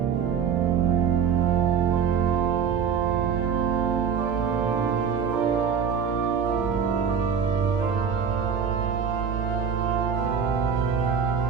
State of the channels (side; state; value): left; quieter; 6.9 dB